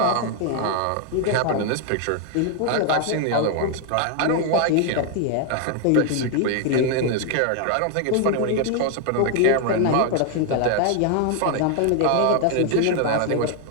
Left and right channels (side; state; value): both; different; correlation 0.00